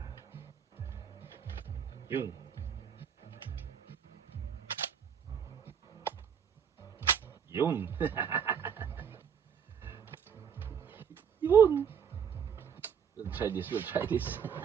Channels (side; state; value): left; quieter; 7.6 dB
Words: Yun. Yun. Yun. We'll try this. We'll try this.